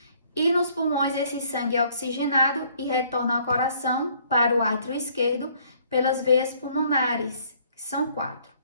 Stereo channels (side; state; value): both; inverted; correlation -0.62